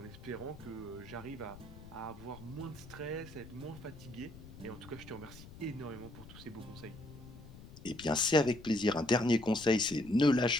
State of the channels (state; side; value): noise; left; rumble, 16 dB below the sound